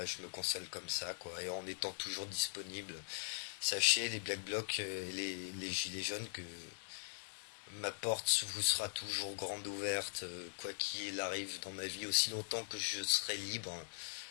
je me console comme ça, quoi. Et en étant toujours disponible. Sachez, les Black Blocs et les Gilets jaunes, que ma porte vous sera toujours grande ouverte, quoi qu'il arrive dans ma vie, aussi longtemps que je serai libre.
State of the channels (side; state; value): right; silent; digital silence